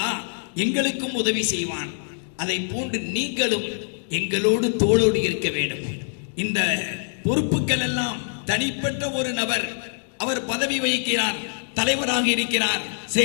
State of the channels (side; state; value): right; silent; digital silence